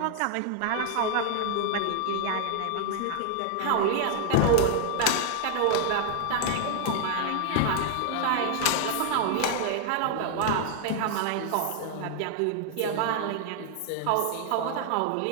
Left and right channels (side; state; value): both; different; correlation 0.00